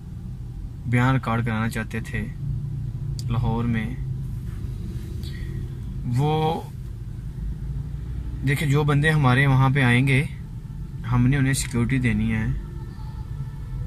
बयान रिकॉर्ड कराना चाहते थे लाहौर में। वो देखिए, जो बंदे हमारे वहाँ पे आएंगे, हमने उन्हें सिक्योरिटी देनी है,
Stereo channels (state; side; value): identical; both; correlation 1.00